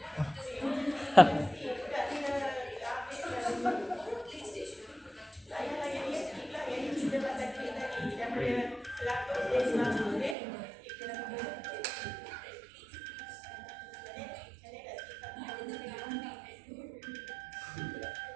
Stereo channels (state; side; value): drops out; left; at 10.4 s